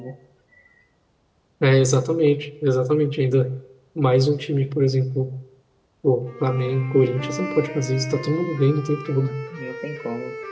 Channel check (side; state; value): both; identical; correlation 1.00